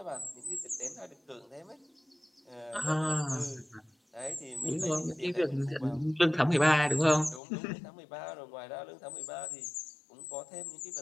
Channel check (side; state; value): right; drops out; at 7.4 s